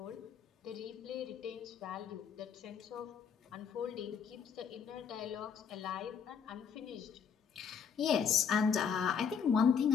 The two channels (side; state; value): right; quieter; 6.8 dB